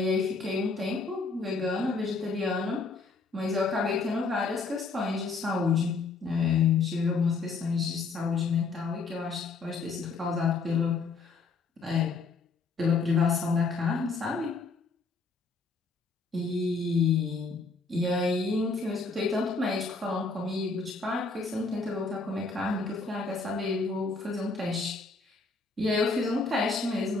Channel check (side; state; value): right; quieter; 4.2 dB